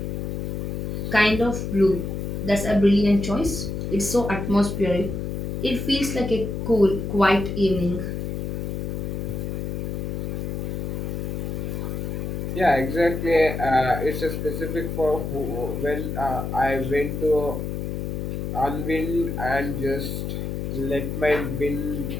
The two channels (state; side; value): noise; left; hum, 3 dB below the sound